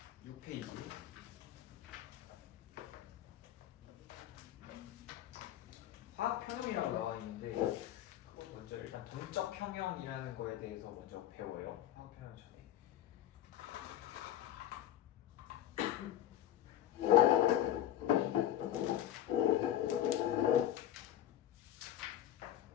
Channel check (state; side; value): quieter; right; 11.8 dB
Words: 화학 평형이라고 나와 있는데 그거 먼저 일단 동적 평형이라는 거에 대해서 먼저 배워요. 화학 평형 전에.